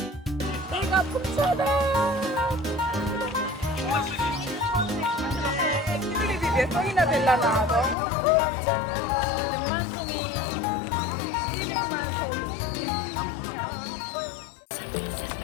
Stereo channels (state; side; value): drops out; right; at 8.0 s